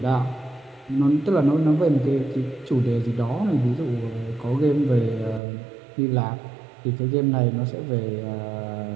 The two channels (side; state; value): left; drops out; at 5.4 s